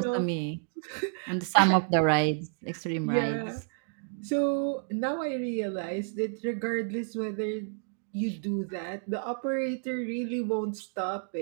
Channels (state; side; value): silent; left; digital silence